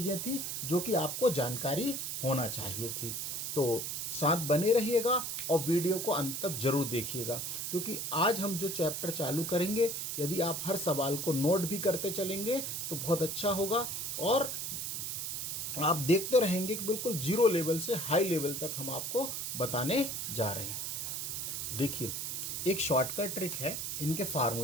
थी जो कि आपको जानकारी होना चाहिए थी। तो साथ बने रहिएगा और वीडियो को अंत तक जरूर देखिएगा, क्योंकि आज हम जो चैप्टर चालू करेंगे, यदि आप हर सवाल को नोट भी करते चलेंगे तो बहुत अच्छा होगा, और आप देखते रहेंगे कि बिल्कुल जीरो लेवल से हाई लेवल तक हम आपको बताने जा रहे हैं। देखिए, एक शॉर्टकट ट्रिक है इनके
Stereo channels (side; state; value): right; noise; hiss, 3 dB below the sound